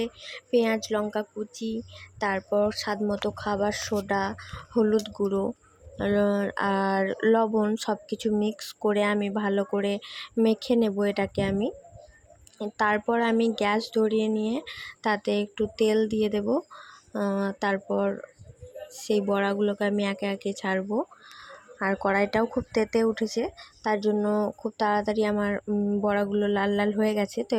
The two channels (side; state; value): both; identical; correlation 1.00